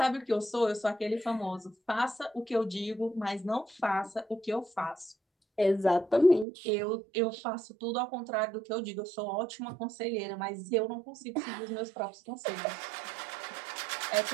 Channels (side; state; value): left; drops out; at 6.5 s